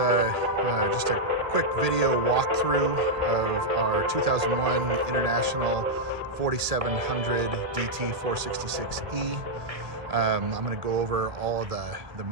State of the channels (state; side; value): late; left; 1.4 ms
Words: just a quick video walkthrough of our 2001 International 4700 DT 466E. I'm going to go over all of the